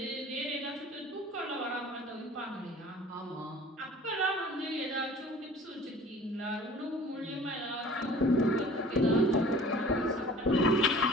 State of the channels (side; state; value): both; normal; correlation 0.46